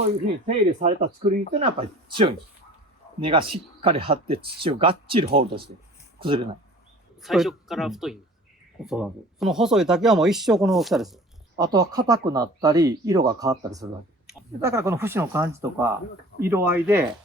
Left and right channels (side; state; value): both; normal; correlation 0.45